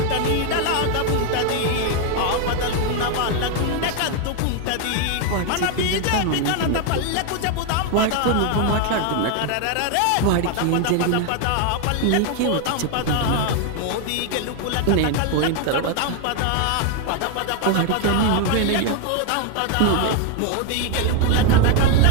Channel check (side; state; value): both; different; correlation 0.01